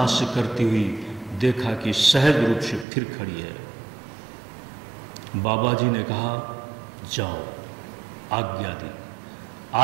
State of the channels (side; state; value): left; drops out; at 2.9 s